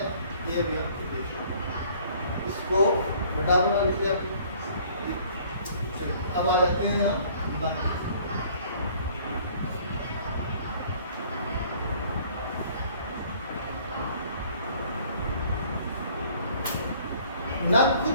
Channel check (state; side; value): inverted; both; correlation -0.56